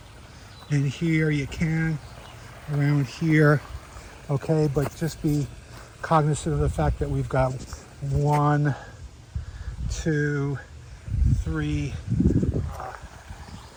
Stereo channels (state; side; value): identical; both; correlation 1.00